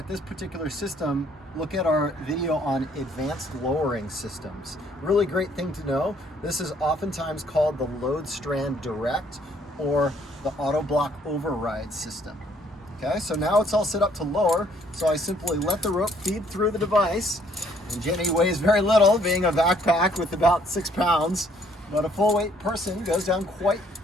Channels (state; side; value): normal; both; correlation 0.64